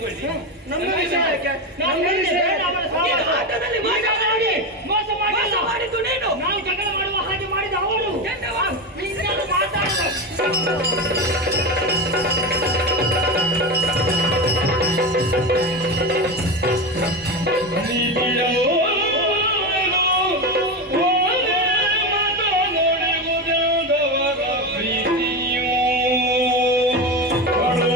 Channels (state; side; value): normal; both; correlation 0.18